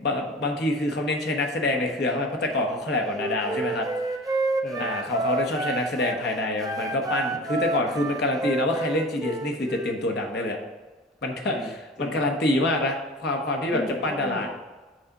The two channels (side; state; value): both; normal; correlation 0.36